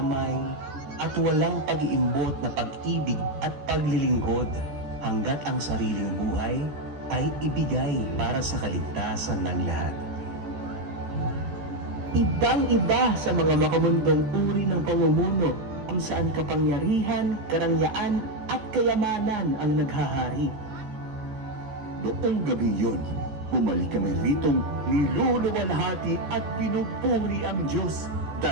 at walang pag-iimbot na pag-ibig at paglilingkod hanggat ang sariling buhay ay ibigay para sa kaligtasan ng lahat. Ibang-iba sa mga makamundong uri ng pamumuno kung saan kapangyarihan, karangyaan at kayamanan ang naghahari. Noong gabi yun, bumalik kami ritong niluluwalhati at pinupuri ang Diyos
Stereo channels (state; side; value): late; left; 14 ms